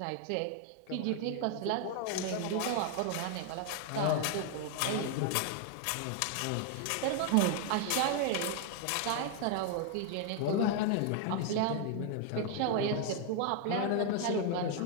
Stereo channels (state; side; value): different; both; correlation 0.01